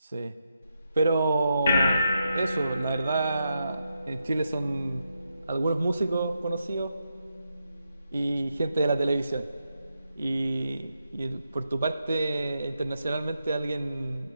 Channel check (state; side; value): inverted; both; correlation -0.84